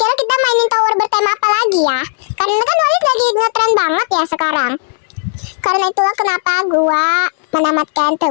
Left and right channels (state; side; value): silent; right; digital silence